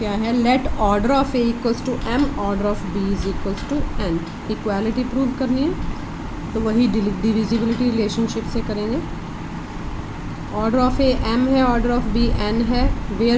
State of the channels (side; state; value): both; identical; correlation 1.00